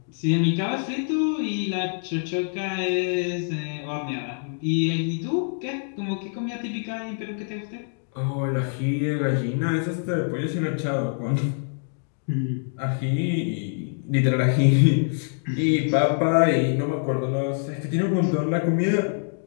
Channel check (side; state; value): right; silent; digital silence